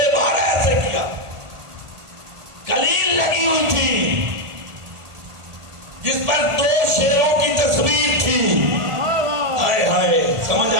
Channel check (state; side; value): late; left; 1.5 ms